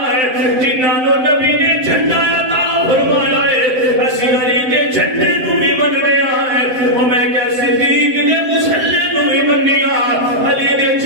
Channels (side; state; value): left; late; 7.8 ms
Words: جنہاں نو نبی نے جھنڈا عطا فرمایا ہے اسی علی دے جھنڈے نو بھی مننے آئے او میں کہ صدیق دے مسلے نو بھی منیا علی دے